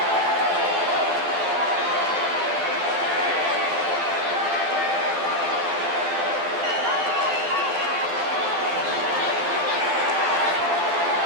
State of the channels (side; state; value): left; late; 12 ms